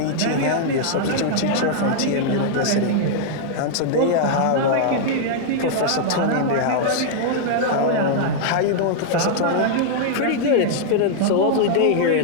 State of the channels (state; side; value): different; both; correlation -0.01